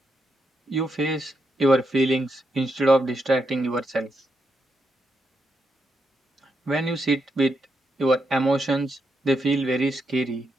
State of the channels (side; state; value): both; normal; correlation 0.83